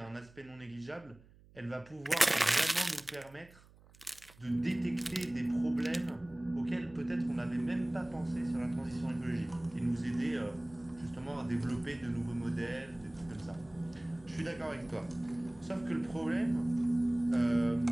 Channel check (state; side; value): noise; right; hum, 25 dB below the sound